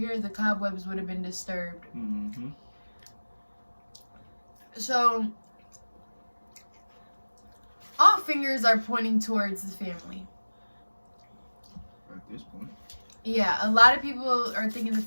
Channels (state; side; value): inverted; both; correlation -1.00